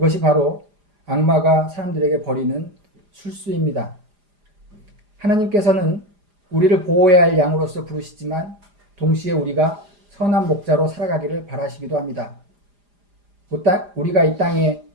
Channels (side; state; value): left; late; 4.9 ms